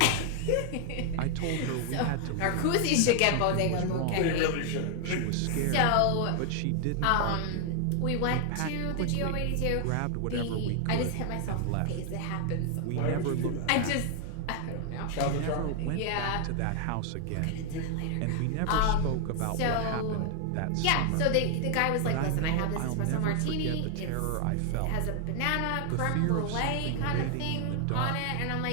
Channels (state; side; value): different; both; correlation 0.00